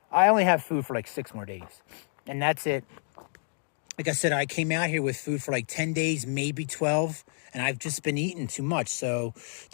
I only have food for like 6 more days. And that's it. Like I said, I came out here with food for like 10 days, maybe 12. And I've just been eating too much. So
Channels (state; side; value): silent; right; 59 dB below the other